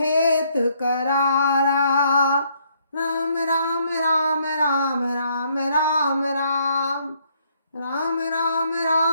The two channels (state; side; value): inverted; both; correlation -0.68